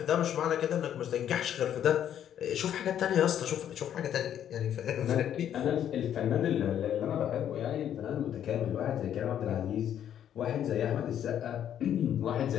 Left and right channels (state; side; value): quieter; right; 10.0 dB